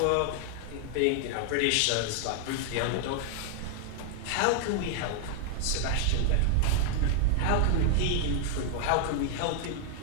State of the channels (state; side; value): different; both; correlation 0.00